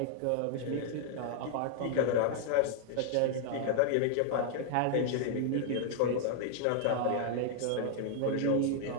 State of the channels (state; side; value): different; both; correlation 0.00